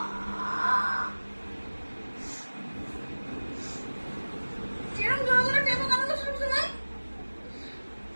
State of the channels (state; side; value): inverted; both; correlation -1.00